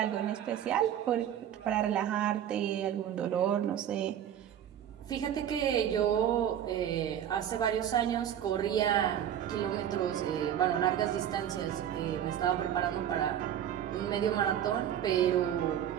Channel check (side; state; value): left; quieter; 10.2 dB